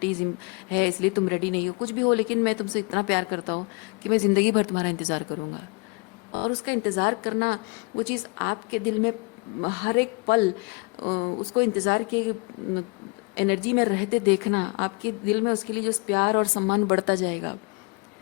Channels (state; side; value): quieter; right; 30.4 dB